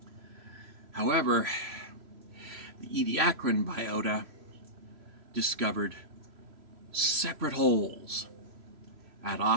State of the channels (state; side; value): late; left; 3.0 ms